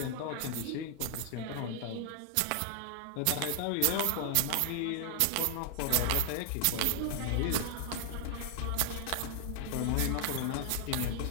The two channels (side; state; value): both; different; correlation -0.01